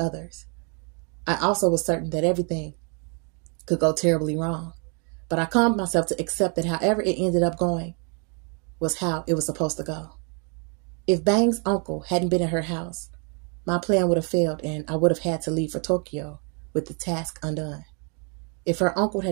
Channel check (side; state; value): left; quieter; 37.3 dB